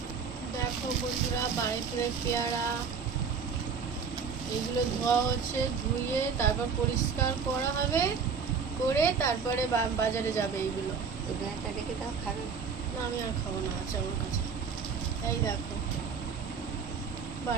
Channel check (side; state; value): left; quieter; 5.9 dB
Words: দেখো বন্ধুরা, বারুইপুরের পেয়ারা এগুলো ধোয়া হচ্ছে, ধুয়ে তারপর পরিষ্কার করা হবে, করে তারপরে বাজারে যাবে। এইগুলো খাবে না, আমি আর খাবো না, আছে আমার কাছে। এই দেখো